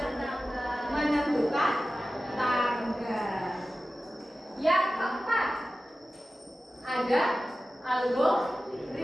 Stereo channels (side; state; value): both; normal; correlation 0.95